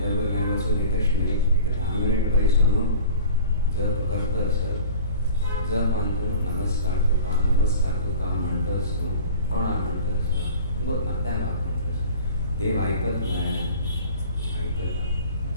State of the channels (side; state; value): both; inverted; correlation -0.41